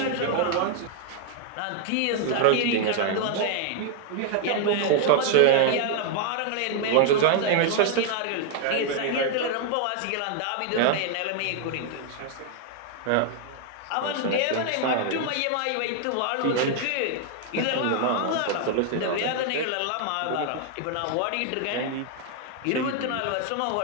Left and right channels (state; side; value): different; both; correlation 0.00